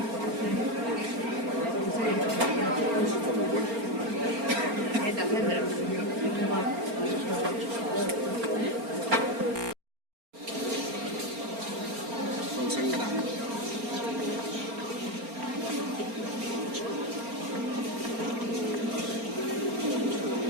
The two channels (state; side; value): late; left; 4.3 ms